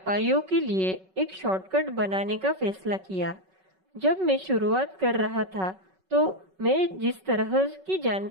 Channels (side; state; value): left; late; 5.3 ms